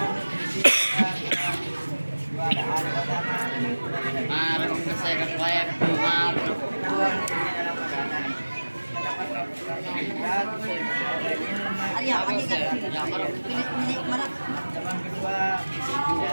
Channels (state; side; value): inverted; both; correlation -1.00